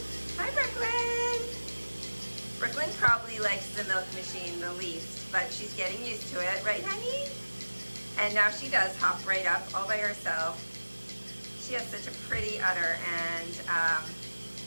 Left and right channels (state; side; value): inverted; both; correlation -1.00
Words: Hi, Brooklyn. Brooklyn probably likes the milk machine the least, but she's getting used to it, right, honey? And now she does hop right up all by herself. She has such a pretty udder, and